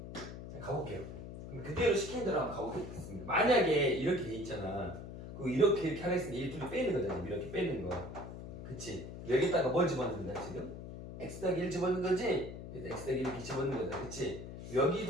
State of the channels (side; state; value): left; noise; hum, 10 dB below the sound